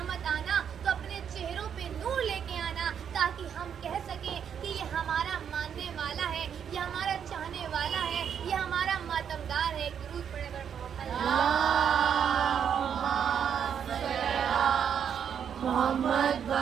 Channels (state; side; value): quieter; left; 8.1 dB